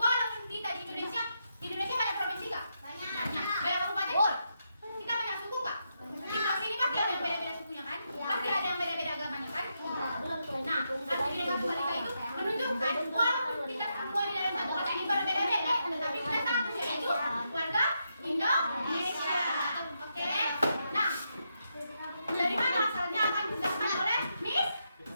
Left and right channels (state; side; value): inverted; both; correlation -0.82